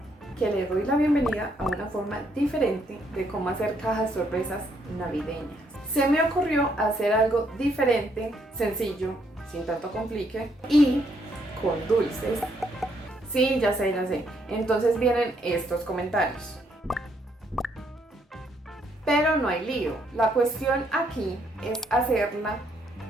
que le doy la bienvenida a una forma diferente de cómo hacer cajas sorpresas navideñas. Se me ocurrió hacer algo diferente, sencillo, sin tanto complique y con dulces. Sí, ya sé, ya sé. Entonces vienen estos comentarios. Pero no hay lío. La cuestión aquí es hacerla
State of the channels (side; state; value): both; normal; correlation 0.72